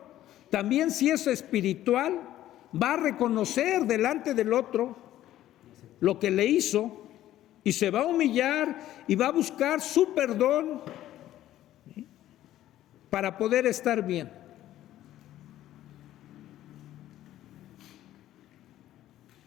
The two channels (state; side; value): quieter; right; 13.4 dB